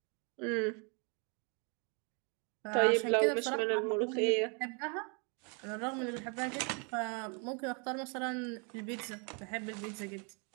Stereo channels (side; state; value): left; quieter; 35.4 dB